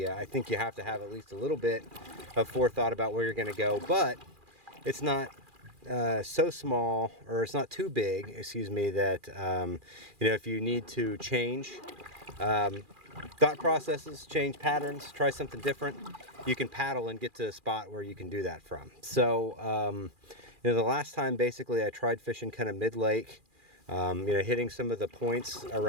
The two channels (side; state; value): left; late; 2.4 ms